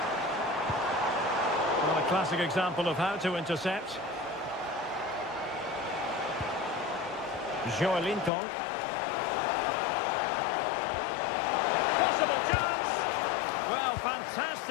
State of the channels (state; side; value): drops out; right; at 8.3 s